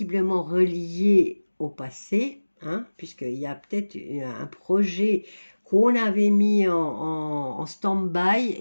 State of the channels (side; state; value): both; inverted; correlation -1.00